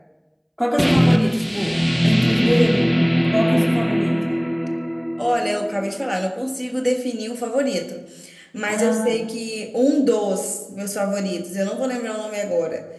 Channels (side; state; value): both; identical; correlation 1.00